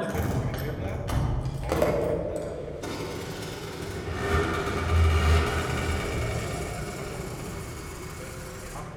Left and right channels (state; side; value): identical; both; correlation 1.00